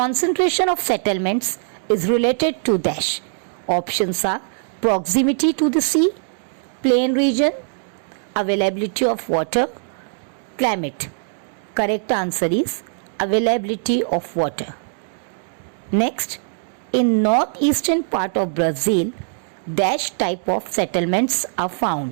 of settlements is related to dash. Options are proximity to the sea, plain region, availability of water, climate. Correct answer is availability of water. Next, in northeastern part of Brazil, dash type of settlements are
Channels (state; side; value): silent; left; digital silence